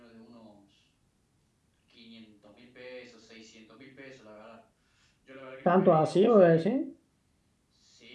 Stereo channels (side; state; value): both; identical; correlation 1.00